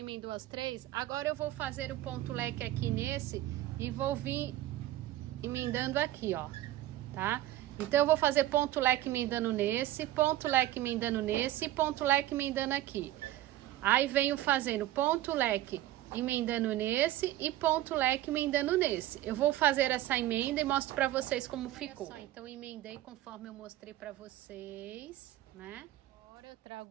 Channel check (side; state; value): left; quieter; 14.6 dB